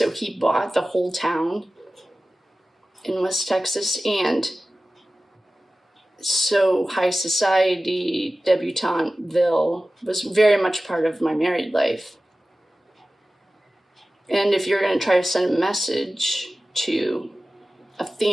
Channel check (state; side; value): normal; both; correlation 0.96